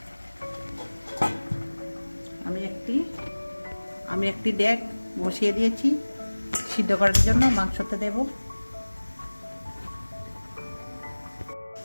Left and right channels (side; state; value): both; inverted; correlation -1.00